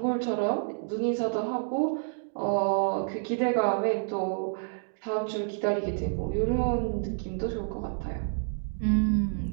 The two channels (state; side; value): silent; left; digital silence